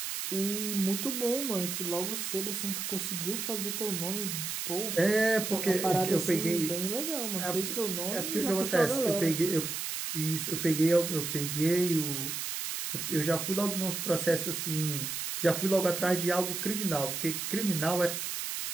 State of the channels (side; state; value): right; noise; hiss, 3 dB below the sound